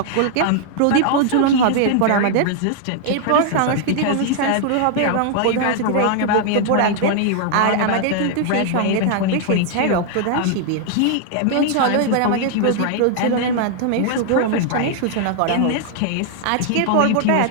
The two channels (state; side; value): different; both; correlation 0.00